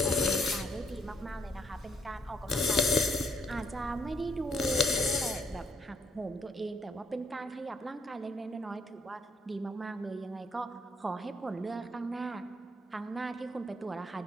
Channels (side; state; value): both; normal; correlation 0.70